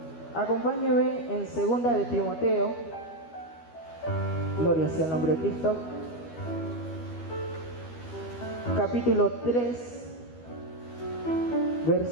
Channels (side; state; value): right; late; 12 ms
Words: Acompáñeme en 2 de Timoteo. Gloria sea el nombre de Cristo. Capítulo 3,